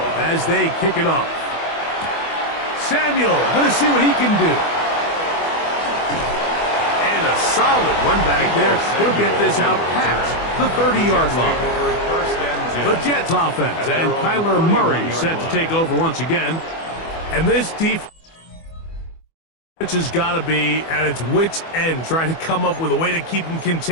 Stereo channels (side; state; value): right; late; 24 ms